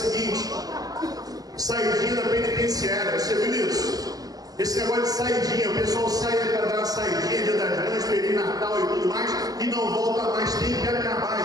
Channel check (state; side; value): late; left; 0.18 ms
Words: saidinha da penitenciária. Você viu isso? Esse negócio de saidinha, o pessoal sai para dar uma saidinha, Dia das Mães, Feliz Natal e tudo mais, e não volta mais. Tem que acabar